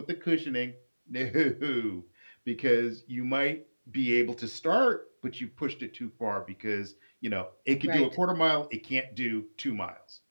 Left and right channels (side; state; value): both; inverted; correlation -1.00